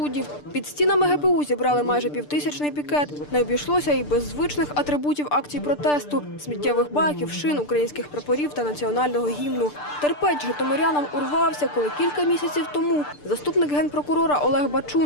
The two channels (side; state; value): right; late; 6.8 ms